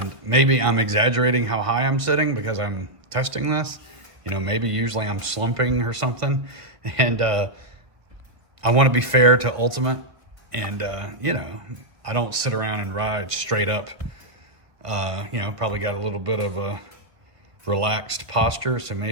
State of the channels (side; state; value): left; late; 1.5 ms